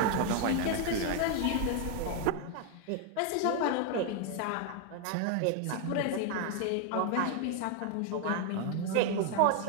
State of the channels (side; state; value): both; different; correlation 0.01